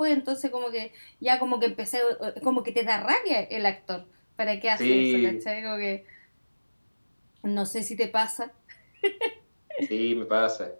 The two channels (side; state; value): both; inverted; correlation -1.00